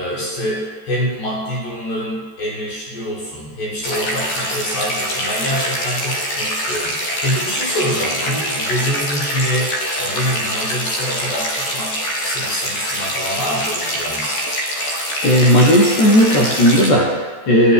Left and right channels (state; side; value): late; right; 14 ms